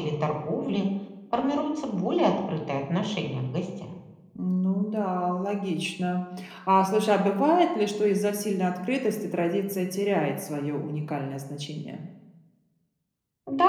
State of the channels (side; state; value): both; identical; correlation 1.00